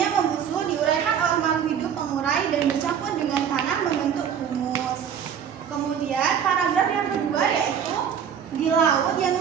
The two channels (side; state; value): left; quieter; 8.2 dB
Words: membusuk, diuraikan oleh makhluk hidup pengurai dan bercampur dengan tanah membentuk humus. Kemudian paragraf yang kedua yaitu di laut yang